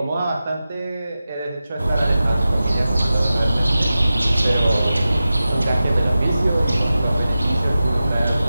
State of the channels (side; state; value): both; inverted; correlation -0.94